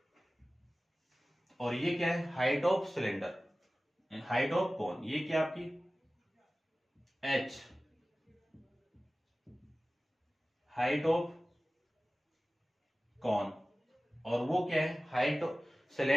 और ये क्या है, height of cylinder, height of cone, ये क्या आपकी h, हाइट ऑफ कॉन, और वो क्या है, height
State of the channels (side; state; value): both; normal; correlation 0.97